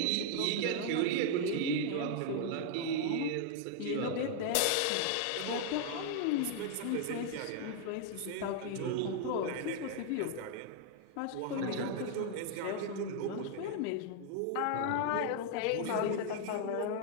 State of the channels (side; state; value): both; different; correlation 0.00